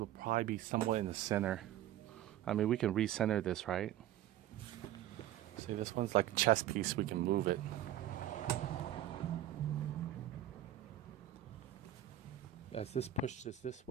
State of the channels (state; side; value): quieter; left; 12.3 dB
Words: probably be somewhat in the center. I mean, we can recenter this, right? See, this one's like a chess piece. We can move it. As this pushes this